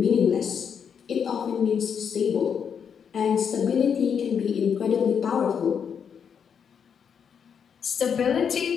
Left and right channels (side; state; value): right; quieter; 7.3 dB